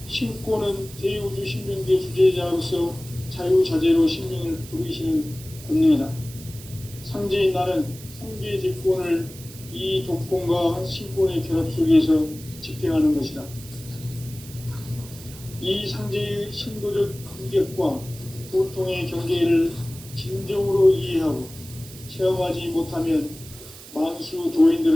신권은 대우주 신명계 주제자로서 자유자재로 신명을 부르시는 권능이다. 상제인 나는 상계의 직권을 이 독권과 신권의 결합 속에서 집행하는 것이다. 이 상제의 신도적 인격과 보통의 경계를 진정으로 이해하고 체험하지 못하면 만수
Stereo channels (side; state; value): right; noise; hiss, 17 dB below the sound